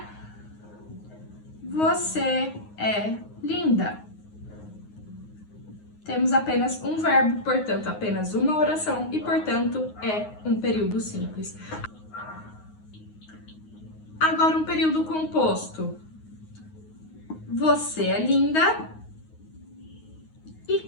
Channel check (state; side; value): late; right; 9.5 ms